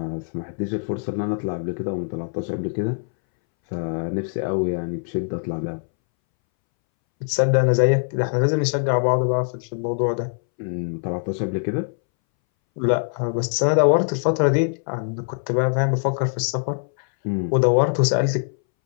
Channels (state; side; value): silent; right; 63 dB below the other